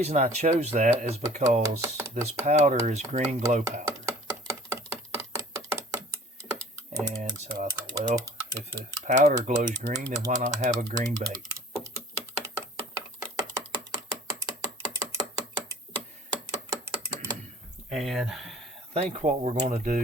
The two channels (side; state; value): both; normal; correlation 0.48